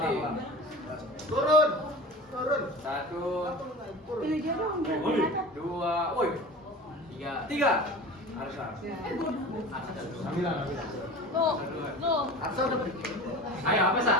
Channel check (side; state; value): both; normal; correlation 0.36